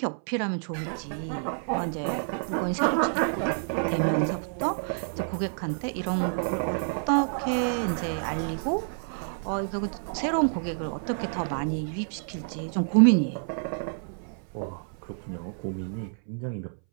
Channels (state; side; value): silent; left; 59 dB below the other